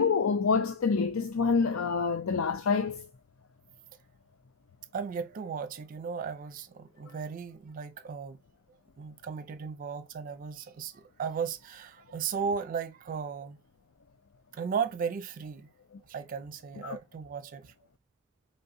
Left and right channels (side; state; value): both; normal; correlation -0.02